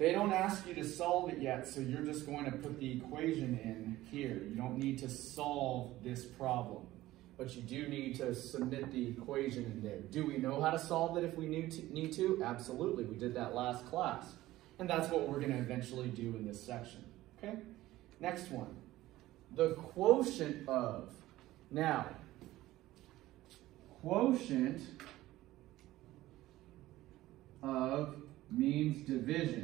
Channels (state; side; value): quieter; left; 16.3 dB